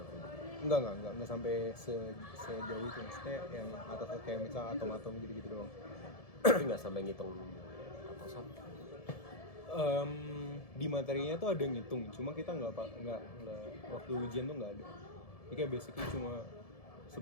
enggak sampai sejauh itu, maksudnya yang atas kayak misalnya atom-atom gitu-gitu doang. Tapi nggak sampai ngitung atau sama. Di materinya tuh ada ngitung, cuma kita nggak waktu ujian tuh nggak ada. Jadi kayak basically cuma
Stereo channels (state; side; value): late; right; 1.7 ms